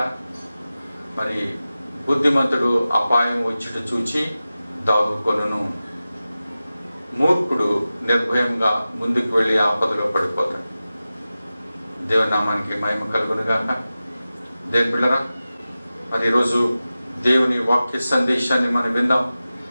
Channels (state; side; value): inverted; both; correlation -0.95